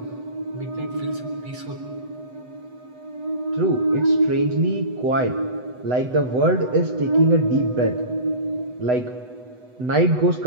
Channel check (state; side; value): late; left; 8.0 ms